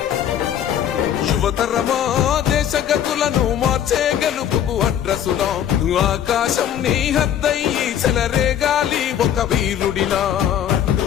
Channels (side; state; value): right; quieter; 10.0 dB